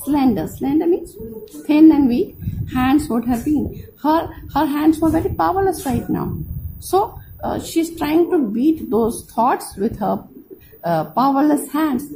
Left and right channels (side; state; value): both; identical; correlation 1.00